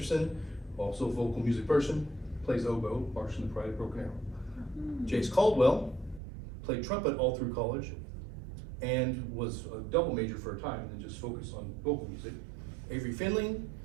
also a vocal music person, plays oboe, march in the Pride of Broken Arrow. Jace Caldwell played trumpet all through college and was a double major for a time and then just focused on vocal music. Avery Finley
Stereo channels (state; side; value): drops out; left; at 6.2 s